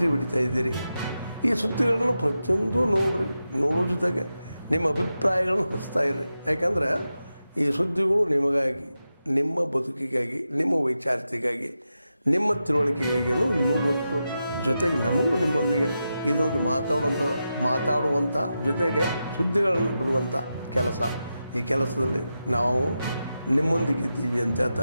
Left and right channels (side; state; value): both; inverted; correlation -0.90